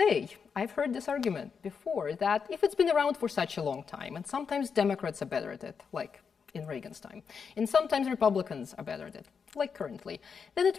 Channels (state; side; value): quieter; right; 6.1 dB